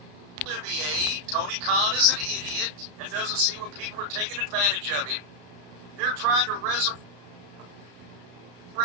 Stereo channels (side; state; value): left; late; 33 ms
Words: Olivier, Tony Khan is an idiot and doesn't see when people are taking advantage of him. They're trying to resurrect